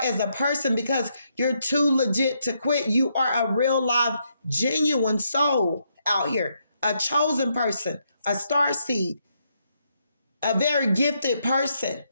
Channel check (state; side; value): inverted; both; correlation -0.78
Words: a person because you're too legit to quit. You are a real live, genuine soul out here, a chosen person, a star seed, a very gifted person